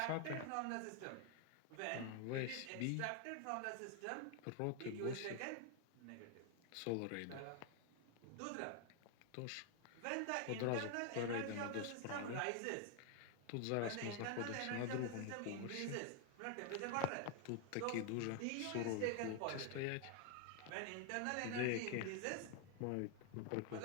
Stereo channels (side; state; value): both; different; correlation 0.00